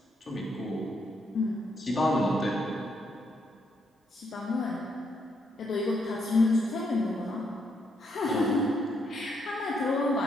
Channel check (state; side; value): normal; both; correlation 0.75